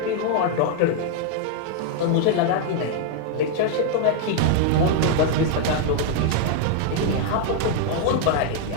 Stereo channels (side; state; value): both; different; correlation 0.00